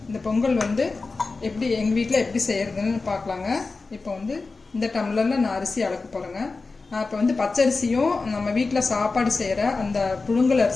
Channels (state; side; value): quieter; right; 3.9 dB